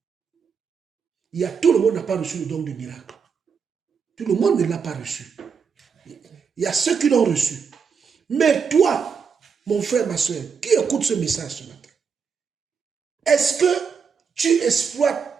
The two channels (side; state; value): left; quieter; 6.1 dB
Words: Tout le monde n'a pas reçu le don de miracle. Tout le monde ne l'a pas reçu. Il y a ceux qui l'ont reçu. Mais toi, mon frère, ma soeur, qui écoute ce message ce matin, est-ce que tu